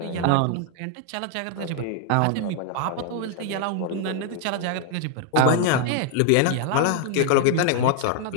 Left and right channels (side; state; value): both; different; correlation 0.00